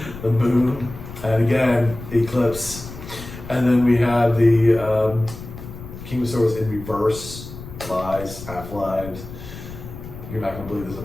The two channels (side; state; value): left; noise; rumble, 13 dB below the sound